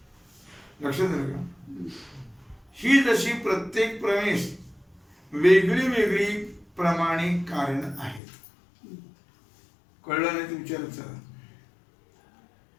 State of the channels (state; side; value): drops out; right; at 8.2 s